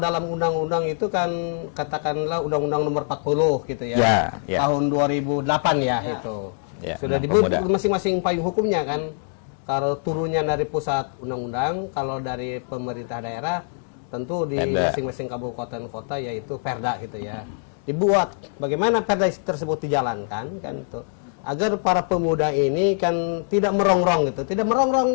undang-undang itu kan katakanlah undang-undang nomor 40 gitu ya. Tahun 2008 itu. Sudah dibuat masing-masing payung hukumnya kan. Kalau turunnya dari pusat undang-undang, kalau dari pemerintah daerah tentu di masing-masing kabupaten kota yaitu Perda gitu ya. Dibuat bagaimana Perda tersebut dijalankan kan itu. Agar para pemuda ini kan tidak merongrong gitu. Tidak merongrong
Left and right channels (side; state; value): right; silent; digital silence